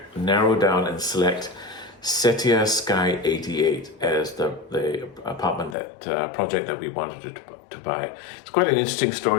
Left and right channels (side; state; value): right; drops out; at 5.8 s